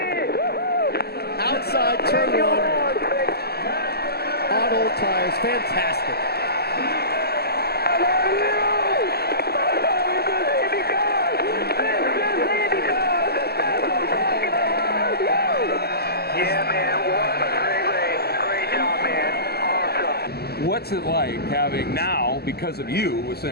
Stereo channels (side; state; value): right; late; 0.46 ms